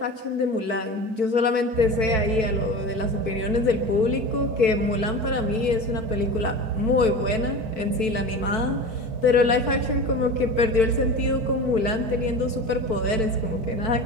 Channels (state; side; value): late; left; 4.5 ms